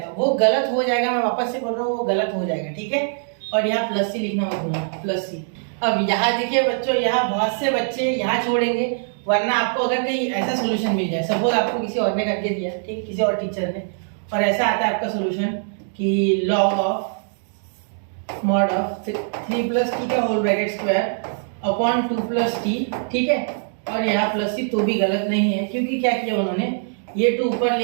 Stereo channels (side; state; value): left; silent; digital silence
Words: वो गलत हो जाएगा, मैं वापस से बोल रहा हूँ वो गलत हो जाएगा, ठीक है। और यहाँ +c लिखना मत भूलना, +c। अब यहाँ देखिए बच्चों, यहाँ बहुत से बच्चे यहाँ छोड़ेंगे, वरना आपको अगर कहीं ऐसा सोल्यूशन मिल जाए, सपोज आपको किसी और ने करके दिया, ठीक है, किसी और टीचर ने, और ऐसा आता है आपका सोल्यूशन कि log of mod of 3 + t का whole bracket square upon 2 + t, ठीक है, और यहाँ +c, तो भी गलत नहीं है, क्योंकि क्या किया उन्होंने, ये 2 ऊपर